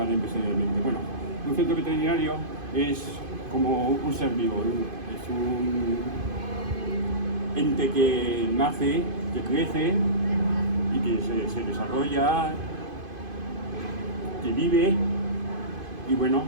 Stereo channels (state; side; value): late; left; 2.5 ms